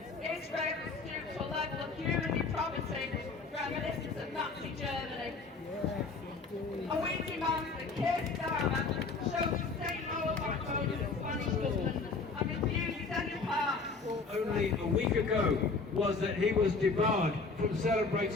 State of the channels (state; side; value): quieter; right; 4.3 dB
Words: has stooped to a level of human depravity reminiscent of Nazi Germany. And we demand that Keir Starmer shows the same moral backbone as the Spanish government and refuses any part. Only a week ago was that he was debarred from